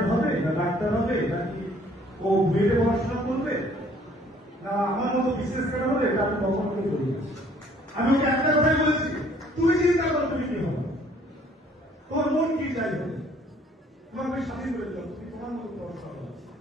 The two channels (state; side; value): normal; both; correlation 0.59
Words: হবে না ডাক্তার হবে নাকি ও বিএডে পড়াশোনা করবে না আমার মতো বিশেষ করে হবে, এটা আমি কখন করে বলি। আমি ওকে একটা কথাই বলেছি, তুই চিন্তা কর তুমি কি হবে, তোর মন কি চাই হবে, তোমাকে স্বাধীন করে দিলাম, তুমি তোমার মতো পড়াশোনা করো।